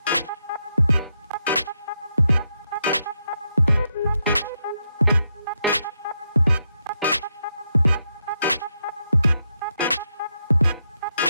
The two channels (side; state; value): both; inverted; correlation -0.82